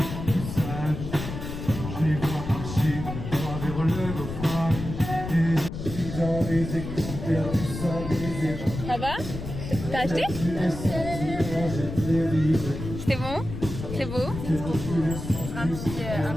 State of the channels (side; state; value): left; noise; rumble, 7 dB below the sound